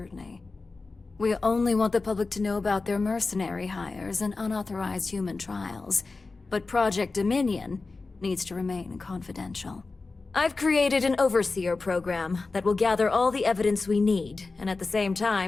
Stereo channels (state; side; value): quieter; right; 3.8 dB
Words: We only want the public to know about their mercenary hires and unauthorized human trials, but Project Dominion needs to remain confidential. I've created an overseer program that will gather all the evidence we need, and at the same